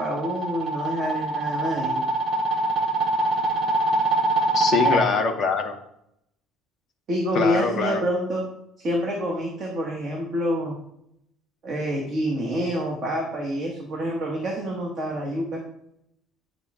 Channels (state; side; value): normal; both; correlation 0.59